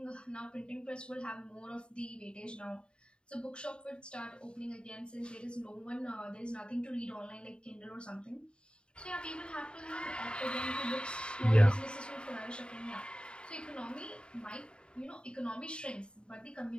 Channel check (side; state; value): right; late; 0.052 ms